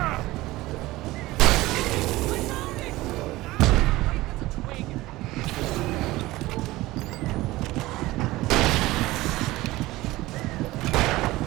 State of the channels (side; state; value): left; quieter; 18.6 dB